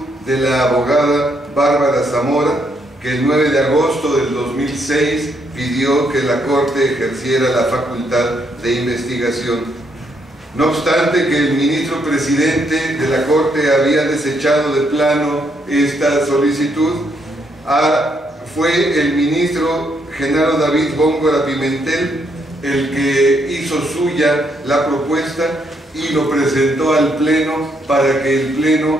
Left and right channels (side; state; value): both; normal; correlation 0.74